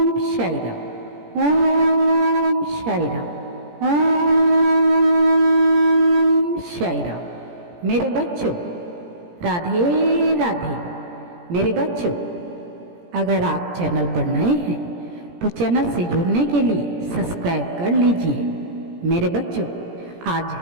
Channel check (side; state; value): left; late; 17 ms